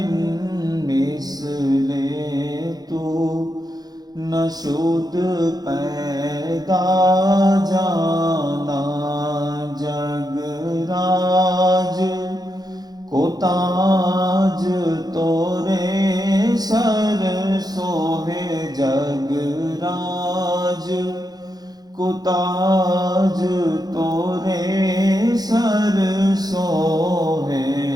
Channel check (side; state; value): left; late; 0.19 ms